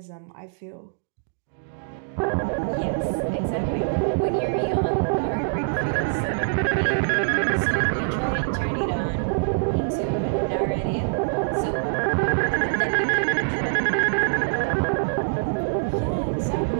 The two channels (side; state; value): left; silent; digital silence